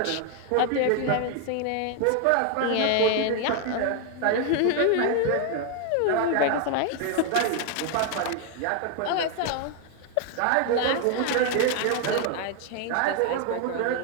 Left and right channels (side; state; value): both; different; correlation 0.00